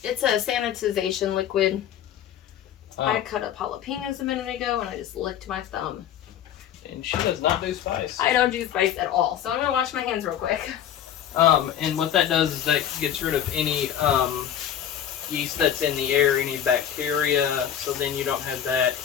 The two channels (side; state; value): right; quieter; 10.0 dB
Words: It's a sanitization liquid. I cut up jalapenos a minute ago and I just licked my thumb. And she does not do spice. I don't do spice at all, so I'm gonna wash my hands real quick. And what that does is that gets rid of any yeast that's in the air, any bacteria, so then you don't have that